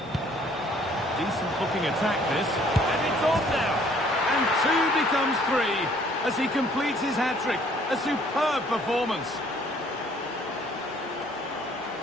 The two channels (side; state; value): both; normal; correlation 0.60